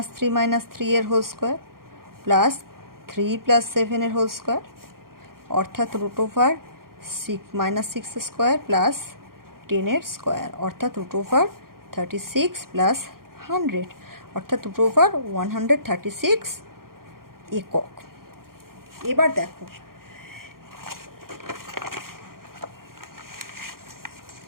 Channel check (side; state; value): left; late; 0.92 ms